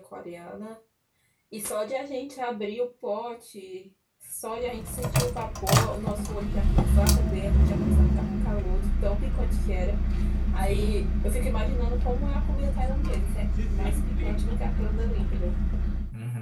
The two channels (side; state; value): both; identical; correlation 1.00